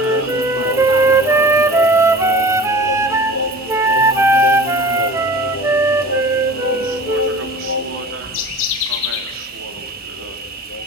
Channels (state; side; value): normal; both; correlation 0.40